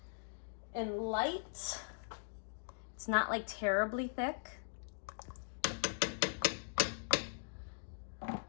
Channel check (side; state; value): right; silent; digital silence